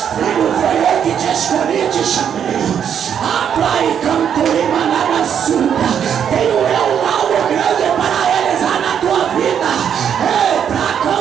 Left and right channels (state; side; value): quieter; left; 8.4 dB